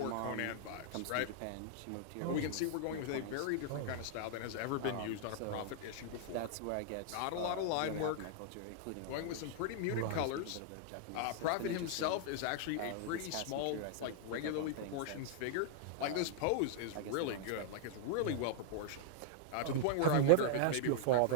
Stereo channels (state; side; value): different; both; correlation -0.01